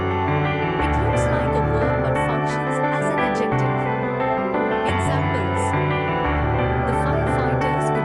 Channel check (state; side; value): identical; both; correlation 1.00